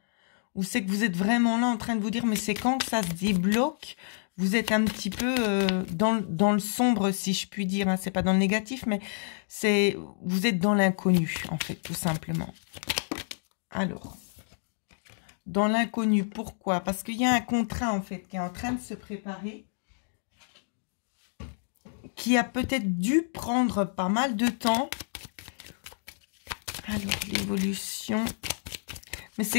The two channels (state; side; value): silent; right; digital silence